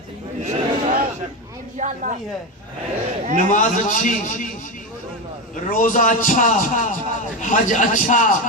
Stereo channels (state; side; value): normal; both; correlation 0.16